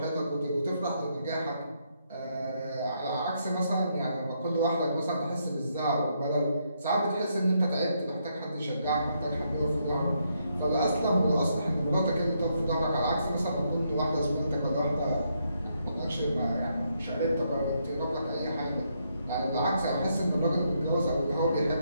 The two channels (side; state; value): both; inverted; correlation -0.77